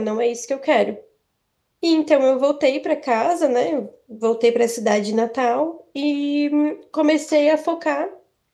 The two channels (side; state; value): both; identical; correlation 1.00